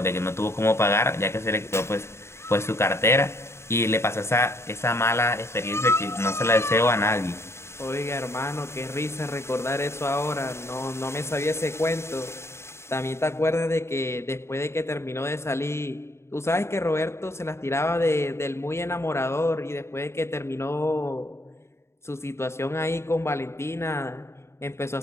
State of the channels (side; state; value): right; late; 0.13 ms